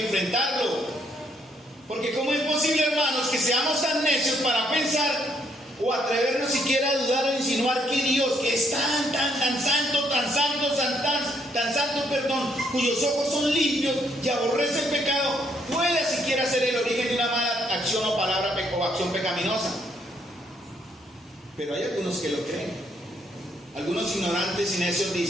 enfrentarlo. Porque ¿cómo es posible, hermanos, que seamos tan necios para pensar o atrevernos siquiera a dudar o insinuar que Dios, que es tan santo, cuyos ojos son limpios y aborrece el pecado, puede siquiera ser el origen de una mala acción o palabra o acción pecaminosa? Pero hay algunos que lo creen. Algunos ignorantes y necios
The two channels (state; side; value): normal; both; correlation 0.71